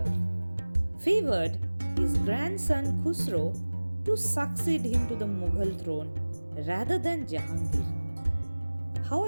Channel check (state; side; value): inverted; both; correlation -1.00